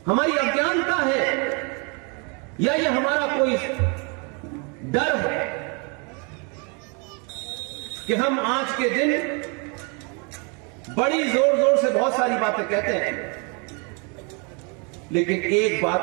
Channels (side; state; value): left; quieter; 34.0 dB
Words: हमारी अज्ञानता है, या ये हमारा कोई डर है कि हम आज के दिन बड़ी जोर जोर से बहुत सारी बातें कहते हैं, लेकिन एक